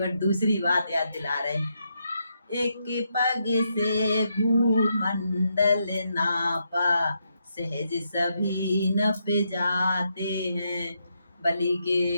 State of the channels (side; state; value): both; inverted; correlation -0.80